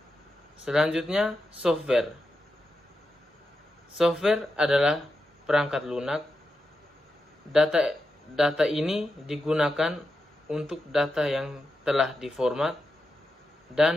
Selanjutnya, software. Software adalah perangkat lunak. Data ini digunakan untuk data yang telah diformat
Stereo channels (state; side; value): normal; both; correlation 0.88